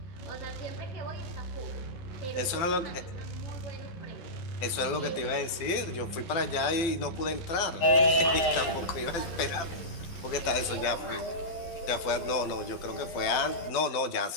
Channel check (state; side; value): late; right; 12 ms